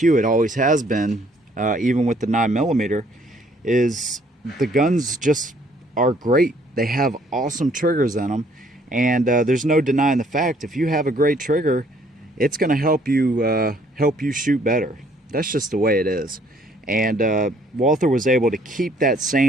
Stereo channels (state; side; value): normal; both; correlation 0.63